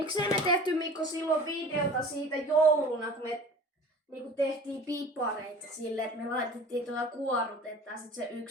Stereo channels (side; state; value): both; normal; correlation 0.42